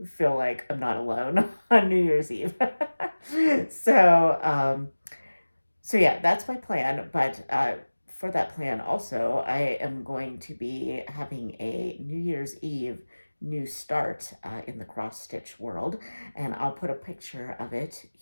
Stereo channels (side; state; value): both; inverted; correlation -1.00